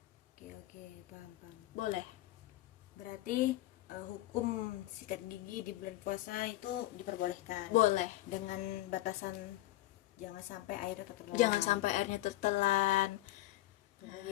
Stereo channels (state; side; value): quieter; right; 16.4 dB